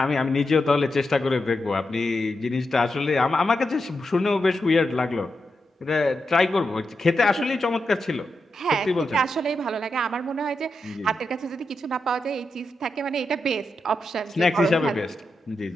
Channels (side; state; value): both; normal; correlation 0.87